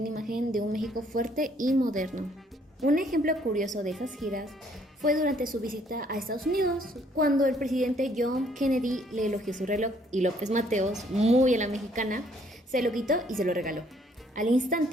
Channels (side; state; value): both; normal; correlation 0.65